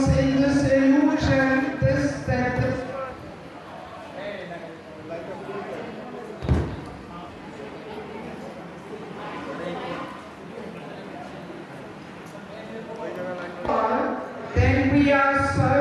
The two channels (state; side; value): identical; both; correlation 1.00